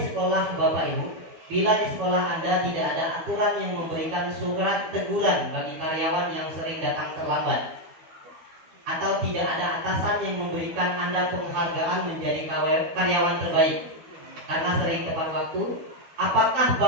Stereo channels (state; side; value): late; left; 12 ms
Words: Bapak Ibu, bila di sekolah Anda tidak ada aturan yang memberikan surat teguran bagi karyawan yang sering datang terlambat, atau tidak ada atasan yang memberikan Anda penghargaan menjadi karyawan terbaik karena sering tepat waktu, apakah